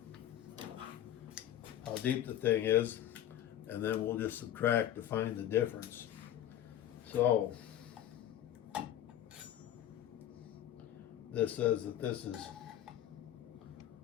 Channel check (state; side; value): quieter; right; 11.5 dB